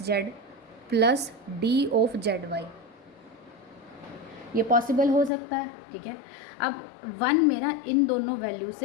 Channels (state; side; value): drops out; right; at 5.3 s